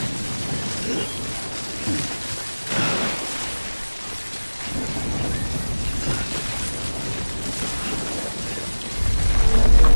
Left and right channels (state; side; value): inverted; both; correlation -1.00